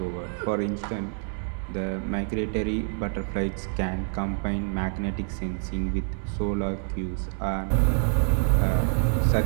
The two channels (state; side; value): silent; left; 58 dB below the other